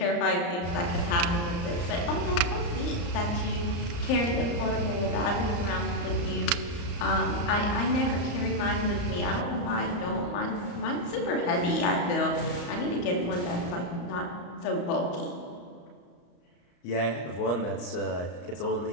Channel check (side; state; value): right; late; 34 ms